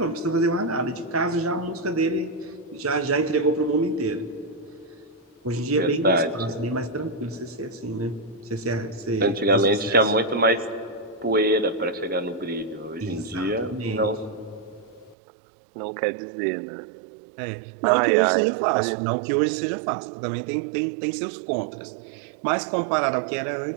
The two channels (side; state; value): left; drops out; at 15.2 s